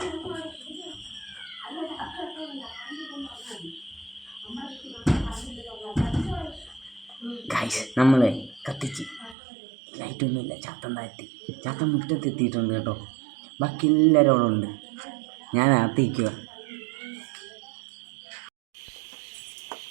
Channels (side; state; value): left; drops out; at 9.3 s